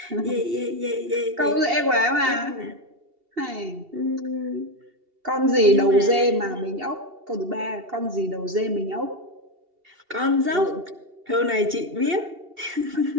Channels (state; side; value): late; left; 2.7 ms